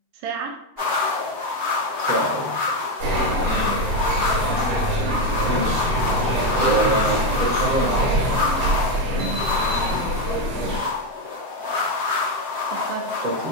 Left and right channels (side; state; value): left; late; 7.6 ms